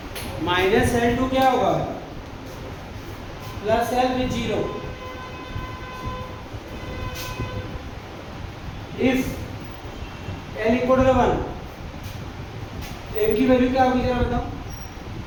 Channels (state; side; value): identical; both; correlation 1.00